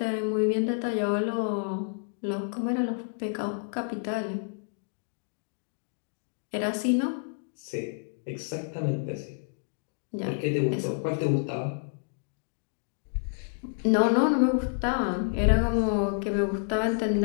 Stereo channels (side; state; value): right; silent; 58 dB below the other